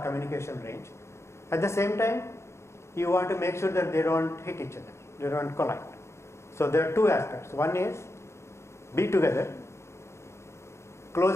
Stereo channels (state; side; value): late; right; 0.13 ms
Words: communication range. At the same time, you want to make sure that they don't hit each other, they don't collide. So there are two aspects. One is be together,